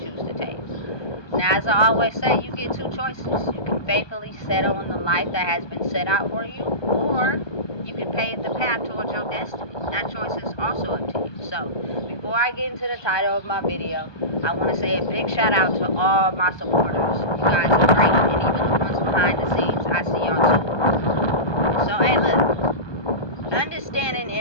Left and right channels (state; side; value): late; right; 1.2 ms